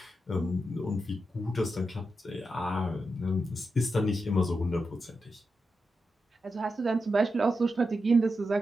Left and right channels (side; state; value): both; normal; correlation 0.87